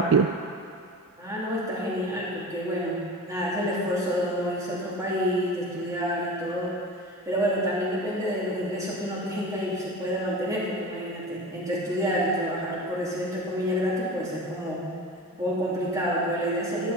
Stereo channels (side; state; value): both; normal; correlation 0.32